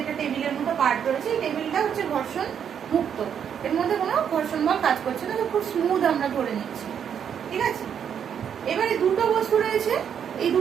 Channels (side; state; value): left; quieter; 8.2 dB